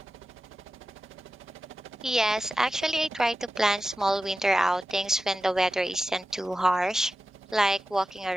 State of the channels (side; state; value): both; normal; correlation 0.93